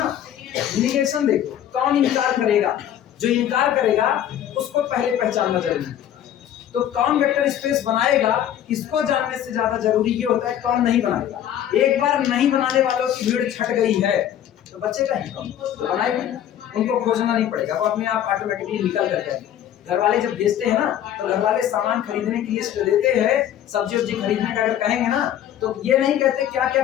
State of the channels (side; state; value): right; quieter; 10.8 dB